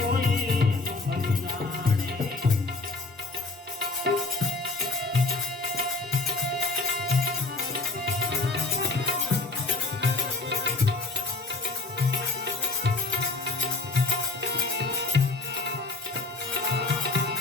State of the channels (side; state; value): right; quieter; 3.5 dB